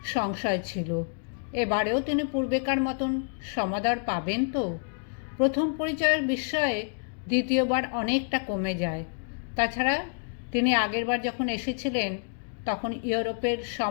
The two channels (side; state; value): right; silent; 59 dB below the other